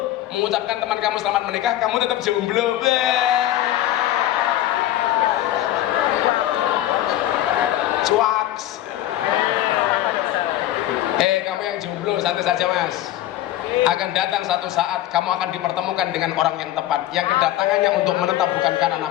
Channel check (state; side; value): quieter; right; 13.6 dB